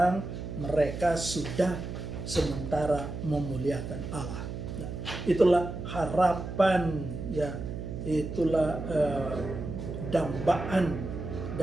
mereka sudah sementara memuliakan Allah. Nah, itulah harapan, ya, itulah dambaan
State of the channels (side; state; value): right; noise; hum, 6 dB below the sound